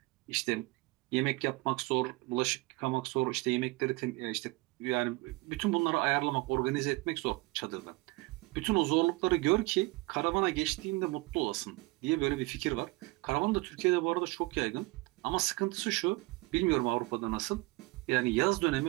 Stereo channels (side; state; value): left; quieter; 23.3 dB